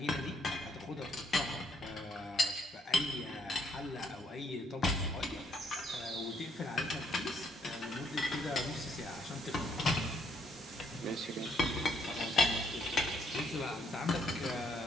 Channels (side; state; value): both; normal; correlation 0.69